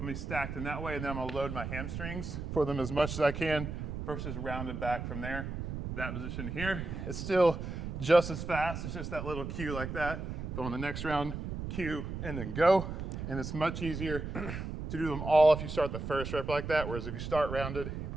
gonna be stacked in that way, and then I'm gonna load my hamstrings for them as much as I can versus rounded back from there. That position here, it's still just as fast. It's just that little cue like that. But on the next round, cue and then go. And it's much easier to do them all if you start the first rep like that, whereas if you start rounded, you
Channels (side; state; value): right; noise; rumble, 6 dB below the sound